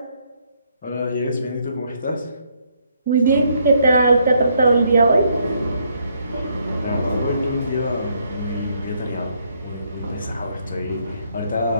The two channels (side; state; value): both; inverted; correlation -0.72